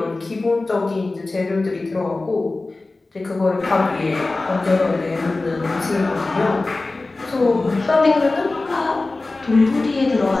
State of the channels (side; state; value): right; quieter; 3.3 dB